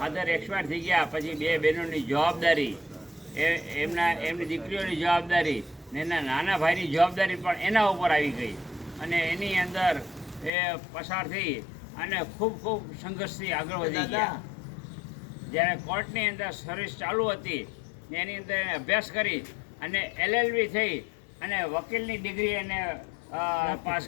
એક્સપાયર થઈ ગયા પછી બે બહેનોની જવાબદારી, એમની દીકરીઓની જવાબદારી ને એના નાના ભાઈની જવાબદારી પણ એના ઉપર આવી ગઈ અને એની અંદર એ પસાર થઈ અને ખૂબ સંઘર્ષથી આગળ વધી ગયા. જ્યારે કોર્ટની અંદર સર્વિસ ચાલુ હતી એની અંદર એને અભ્યાસ કરી અને LLB થઈ અને વકીલની ડિગ્રી એને પાસ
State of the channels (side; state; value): right; drops out; at 10.5 s